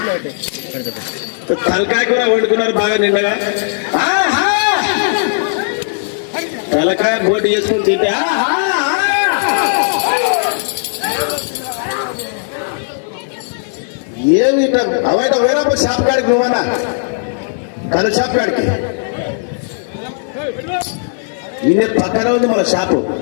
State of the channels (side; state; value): right; silent; digital silence